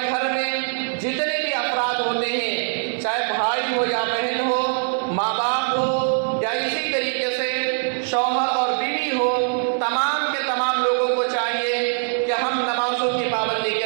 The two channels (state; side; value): silent; left; digital silence